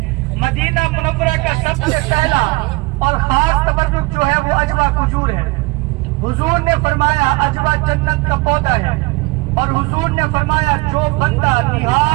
मदीना मुनव्वरा का सबसे पहला और खास तबर्रुक जो है वो अजवा खजूर है। हुजूर ने फरमाया अजवा जन्नत का पौधा है, और हुजूर ने फरमाया जो बंदा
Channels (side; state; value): left; quieter; 23.9 dB